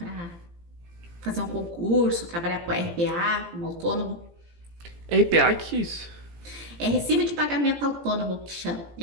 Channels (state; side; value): late; left; 17 ms